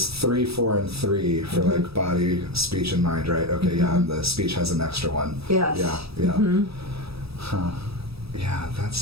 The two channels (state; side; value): late; left; 0.77 ms